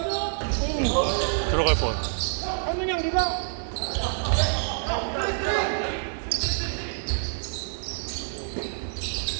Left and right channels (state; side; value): silent; left; 60 dB below the other